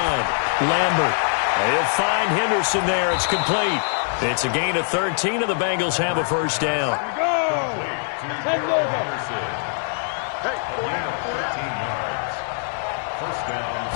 Lambert. He'll find Henderson there. It's complete. It's a gain of 13, and the Bengals have a 1st down. Hey, 13 yards. 1st down.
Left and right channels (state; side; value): silent; right; digital silence